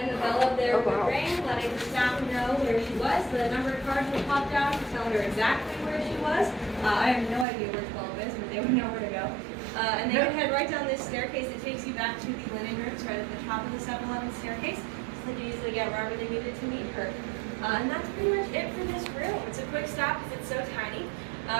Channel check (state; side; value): drops out; left; at 7.5 s